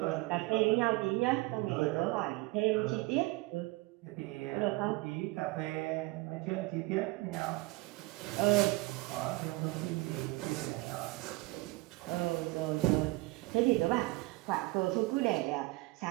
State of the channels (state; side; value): quieter; left; 22.2 dB